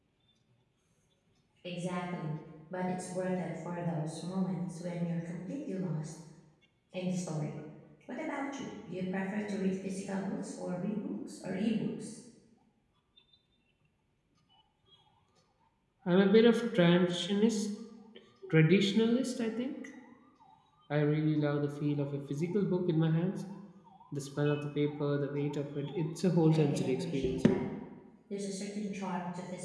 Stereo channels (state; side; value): identical; both; correlation 1.00